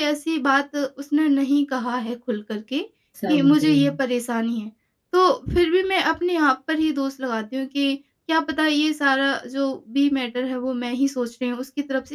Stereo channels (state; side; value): identical; both; correlation 1.00